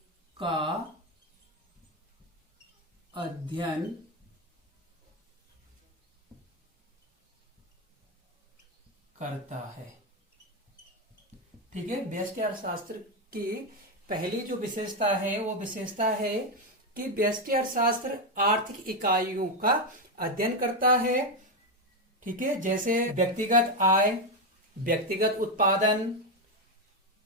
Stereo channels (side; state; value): both; normal; correlation 0.08